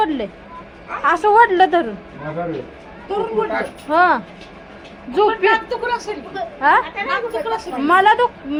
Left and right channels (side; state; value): both; identical; correlation 1.00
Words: असं ओढलं धरून. हा झोपी हा मला